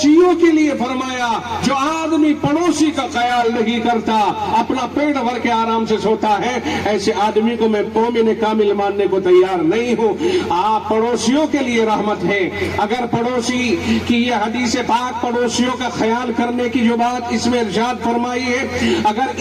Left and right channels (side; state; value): both; identical; correlation 1.00